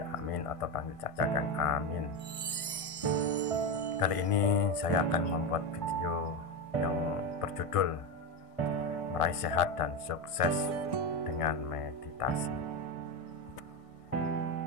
Amin atau panggil saja Kang Amin. Kali ini saya akan membuat video yang berjudul Meraih Sehat dan Sukses dengan Meditasi.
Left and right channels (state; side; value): late; right; 1.6 ms